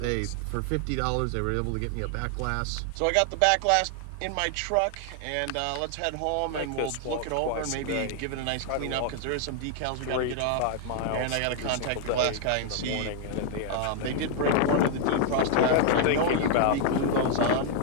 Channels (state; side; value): different; both; correlation 0.00